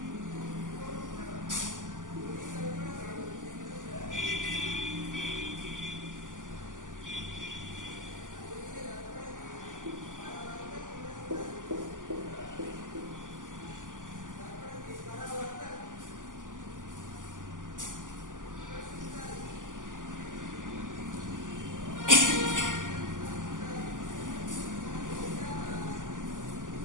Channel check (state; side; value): late; left; 0.88 ms